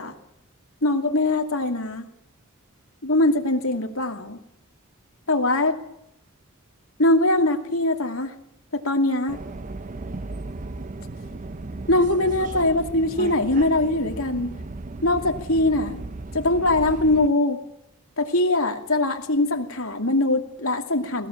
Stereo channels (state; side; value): normal; both; correlation -0.07